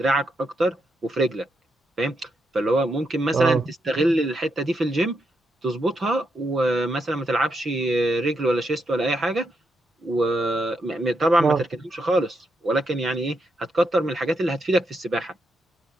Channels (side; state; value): both; normal; correlation 0.81